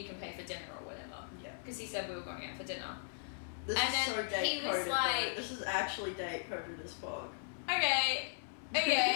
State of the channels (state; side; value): silent; right; 53 dB below the other